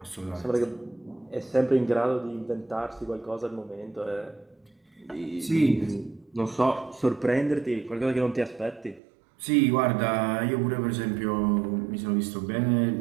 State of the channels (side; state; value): left; drops out; at 9.0 s